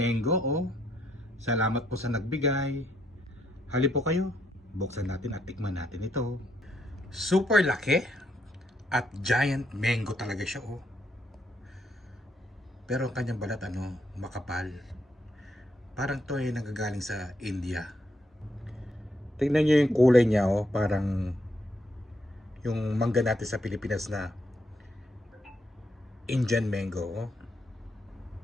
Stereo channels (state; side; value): normal; both; correlation 0.76